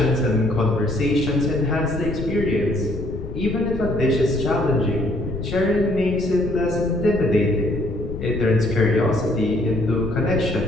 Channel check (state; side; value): noise; left; rumble, 8 dB below the sound